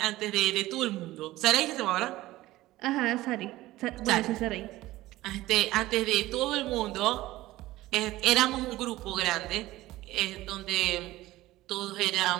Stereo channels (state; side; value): quieter; left; 17.1 dB